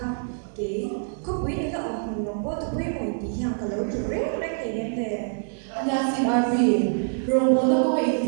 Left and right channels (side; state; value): left; silent; 60 dB below the other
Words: cái có quý nữa là ông đồng bộ tự quý một tí hàng cả lâu từ rất là cái vấn đề Niang sin RP, rong bo na ko ai